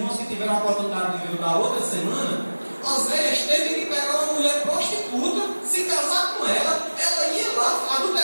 que tiveram a oportunidade de ver da outra semana, Oséias teve que pegar uma mulher prostituta, se casar com ela, ela ia lá,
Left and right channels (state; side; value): inverted; both; correlation -1.00